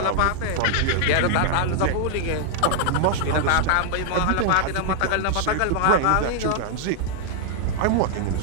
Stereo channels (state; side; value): different; both; correlation -0.01